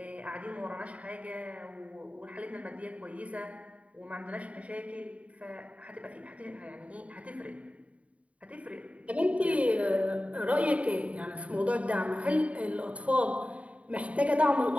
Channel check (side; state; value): left; late; 0.066 ms